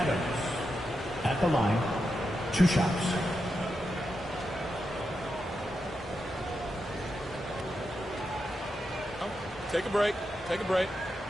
at the line. 2 shots. Take a break. Take a break.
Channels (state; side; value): normal; both; correlation 0.87